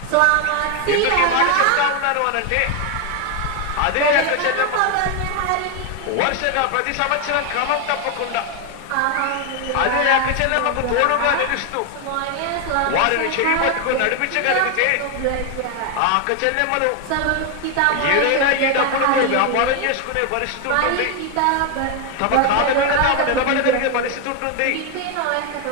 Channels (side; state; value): both; different; correlation 0.01